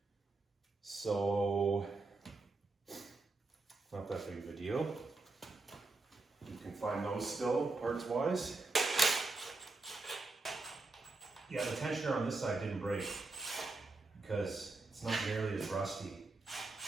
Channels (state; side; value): quieter; left; 3.4 dB